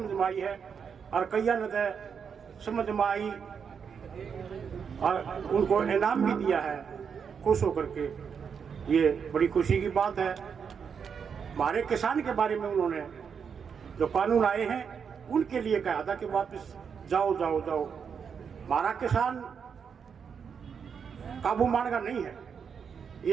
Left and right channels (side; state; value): left; quieter; 6.7 dB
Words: में आई है, और कईया ने समझ में आई और उनको इनाम भी दिया है खुश होकर के। ये बड़ी खुशी की बात है। हमारे किसान के बारे में उन्होंने जो कानून आए हैं उनके लिए कहा था कि वापस जाओ जाओ जाओ। हमारा किसान काबू मानेगा नहीं है,